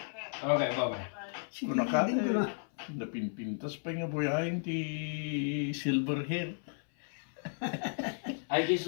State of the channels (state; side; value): silent; right; 55 dB below the other